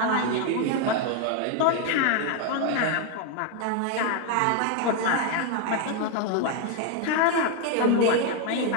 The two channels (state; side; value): different; both; correlation 0.01